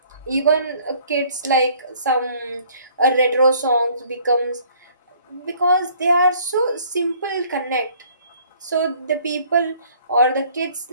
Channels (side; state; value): both; inverted; correlation -0.58